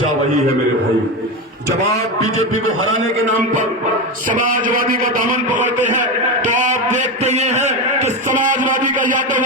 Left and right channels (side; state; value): both; normal; correlation 0.17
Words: वही है मेरे भाई, जब आप बीजेपी को हराने के नाम पर समाजवादी का दामन पकड़ते हैं तो आप देखते ये हैं कि समाजवादी का यादव